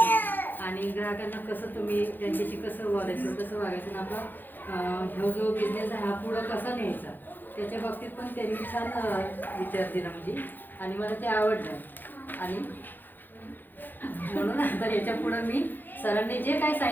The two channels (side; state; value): right; late; 0.089 ms